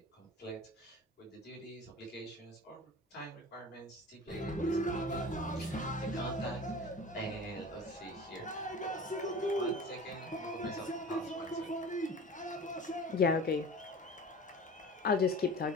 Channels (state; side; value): normal; both; correlation 0.38